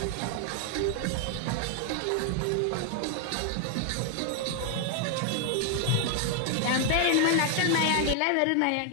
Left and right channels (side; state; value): both; different; correlation 0.00